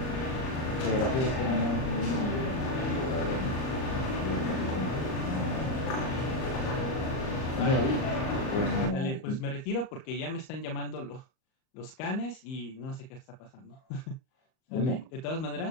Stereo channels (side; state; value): right; late; 38 ms